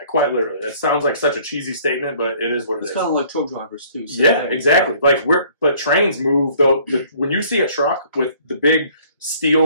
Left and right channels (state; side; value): inverted; both; correlation -0.56